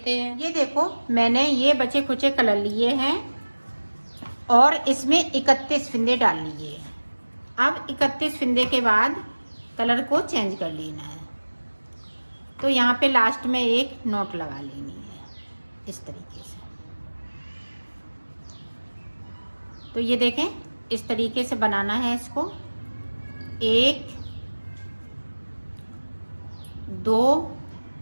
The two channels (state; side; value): inverted; both; correlation -1.00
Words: हैं। ये देखो, मैंने ये बचे खुचे कलर लिए हैं और इसमें 31 फिंदे डाल लिए हैं। अब 31 फिंदे के बाद कलर को चेंज कर लेना है। तो यहाँ पे लास्ट में एक नोट लगा लेनी है इस तरीके से। तो ये देखें, इस तरीके से बनाना है इसको। 1 2